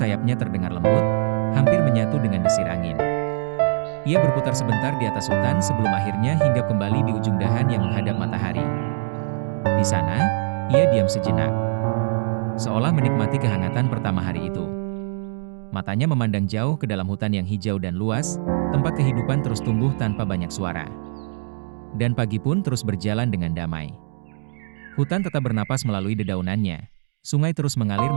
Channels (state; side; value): silent; left; digital silence